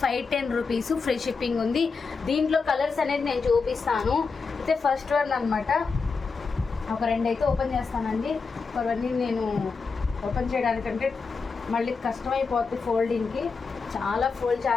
510 rupees, free shipping ఉంది. దీంట్లో కలర్స్ అనేది నేను చూపిస్తాను. అయితే ఫస్ట్ వన్ అనమాట, ఒక రెండు అయితే ఓపెన్ చేస్తానండి. అవన్నీ నేను ఓపెన్ చేయడానికంటే మళ్ళీ కష్టమైపోతుంది ఫోల్డింగ్కి, చాలా ఫోల్డ్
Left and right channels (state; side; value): quieter; right; 4.8 dB